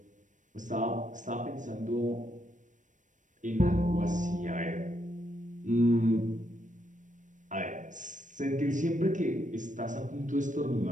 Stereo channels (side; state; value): left; late; 0.37 ms